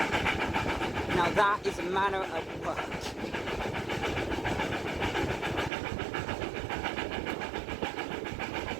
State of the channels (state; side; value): drops out; left; at 5.7 s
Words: Now that is a manner of work.